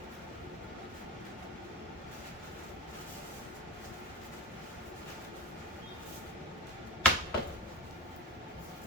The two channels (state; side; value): normal; both; correlation 0.25